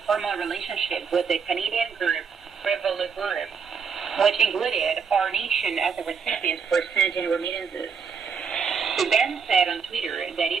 formal relationship with the Canadian group Revolut Group, which included our nation as a recipient for sending remittances. The bank said on Twitter that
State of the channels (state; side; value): quieter; left; 6.0 dB